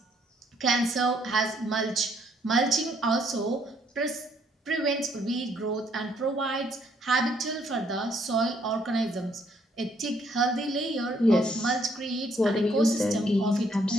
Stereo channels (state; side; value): normal; both; correlation 0.69